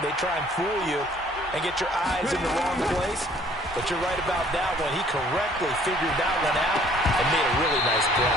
They try and fool you and get your eyes in the wrong place. But you're right about that one. He correctly figured that one out and made a really nice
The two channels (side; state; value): both; normal; correlation 0.58